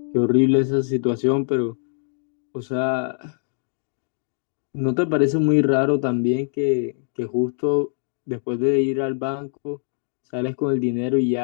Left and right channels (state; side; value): silent; right; digital silence